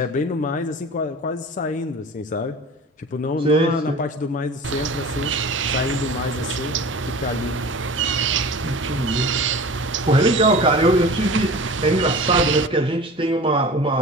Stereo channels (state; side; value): normal; both; correlation 0.38